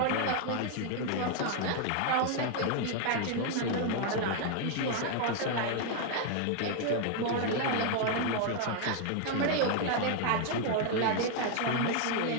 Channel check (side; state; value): both; different; correlation 0.00